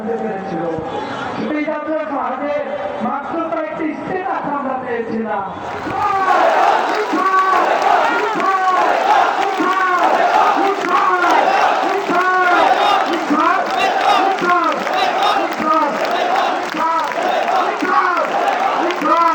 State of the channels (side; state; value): both; identical; correlation 1.00